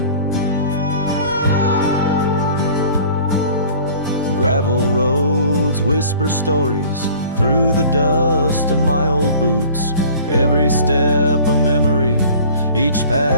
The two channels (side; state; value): both; inverted; correlation -0.47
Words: Gravel roads whisper stories through the dust of my old boots. Every step a memory, each